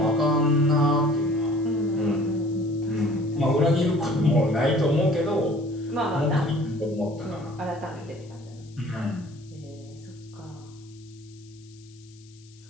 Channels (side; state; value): left; noise; hiss, 27 dB below the sound